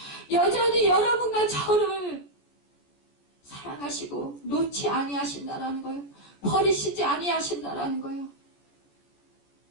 여전히 여러분과 저를 사랑하시고 놓지 아니하신다라는 거예요. 버리시지 아니하신다라는 거예요.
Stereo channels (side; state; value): right; late; 14 ms